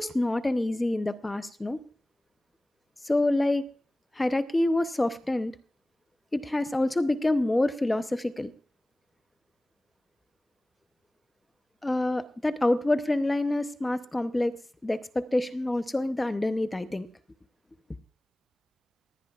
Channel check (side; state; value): both; normal; correlation 0.98